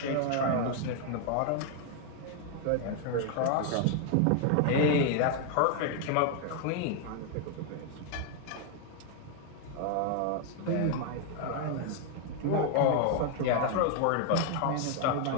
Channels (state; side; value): different; both; correlation 0.00